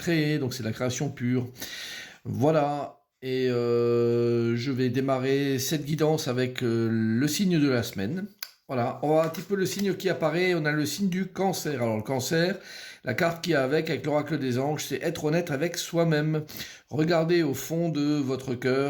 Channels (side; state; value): both; identical; correlation 1.00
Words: donc c'est de la création pure. Voilà. Et je vais démarrer cette guidance avec le signe de la semaine. Voilà, on voit un petit peu le signe qui apparaît, on a le signe du cancer. Alors le cancer, la carte qui est avec l'oracle des anges, c'est être honnête avec soi-même. Regardez au fond de votre